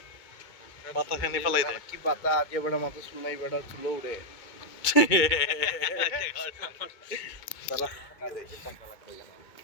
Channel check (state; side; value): late; right; 2.2 ms